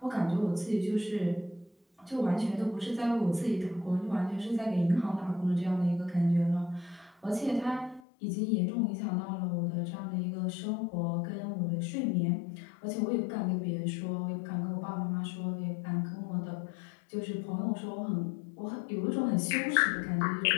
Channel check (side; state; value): right; drops out; at 8.0 s